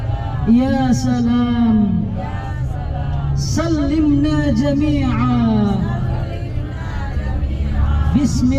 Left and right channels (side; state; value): both; identical; correlation 1.00